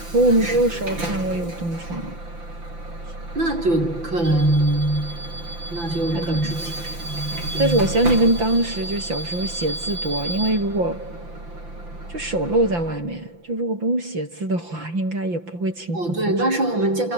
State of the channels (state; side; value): late; left; 5.9 ms